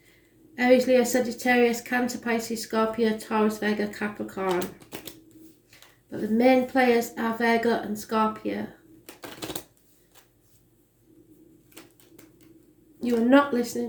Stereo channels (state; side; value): identical; both; correlation 1.00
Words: Aries, Leo, Sagittarius, Cancer, Pisces, Scorpio, Taurus, Virgo, Capricorn. But the main players are Virgo and Scorpio. You are not